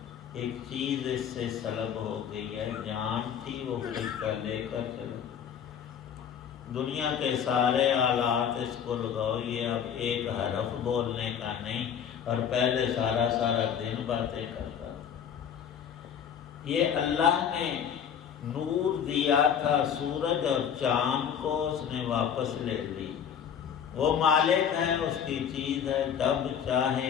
ایک چیز اس سے سلب ہو گئی ہے، جان تھی وہ فرشتہ لے کر چلا۔ دنیا کے سارے آلات اس کو لگاؤ، یہ اب ایک حرف بولنے کا نہیں، اور پہلے سارا دن باتیں کرتا تھا۔ یہ اللہ نے نور دیا تھا سورج اور چاند کو، اس نے واپس لے لی۔ وہ مالک ہے، اس کی چیز ہے، جب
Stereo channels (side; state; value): right; quieter; 8.2 dB